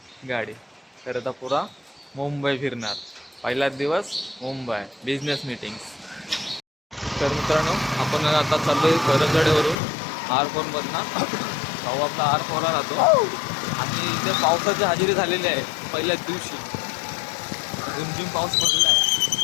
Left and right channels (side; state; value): right; drops out; at 9.8 s